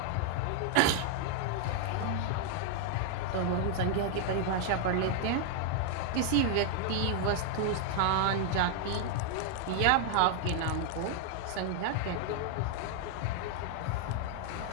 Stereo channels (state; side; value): different; both; correlation 0.00